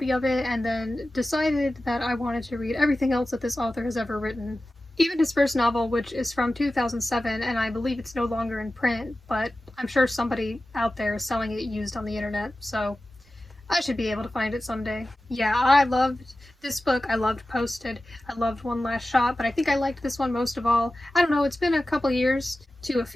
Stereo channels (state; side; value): normal; both; correlation 0.95